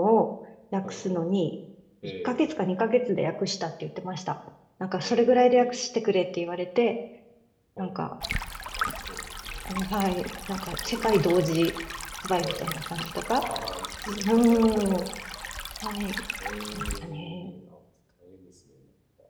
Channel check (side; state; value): both; identical; correlation 1.00